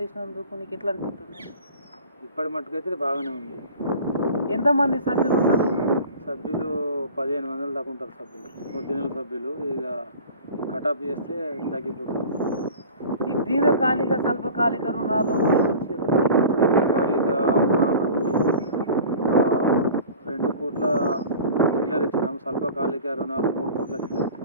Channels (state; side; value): inverted; both; correlation -0.40